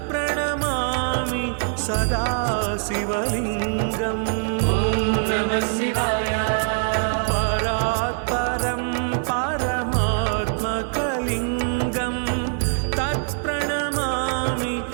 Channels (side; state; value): left; silent; 63 dB below the other